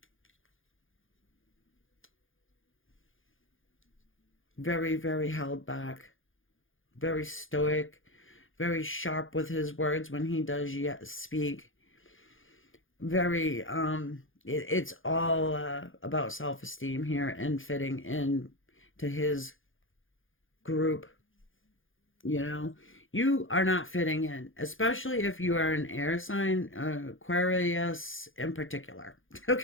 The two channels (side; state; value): right; late; 0.58 ms